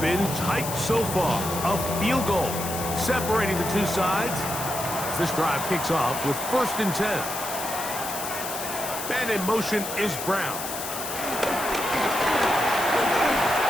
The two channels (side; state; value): left; noise; hiss, 7 dB below the sound